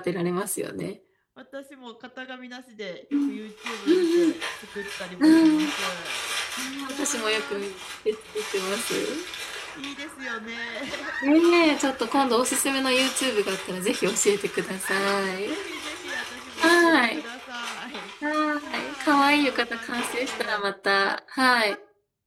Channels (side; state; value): both; identical; correlation 1.00